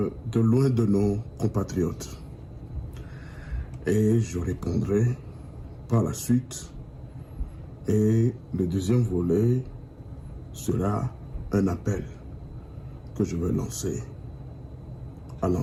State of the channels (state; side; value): identical; both; correlation 1.00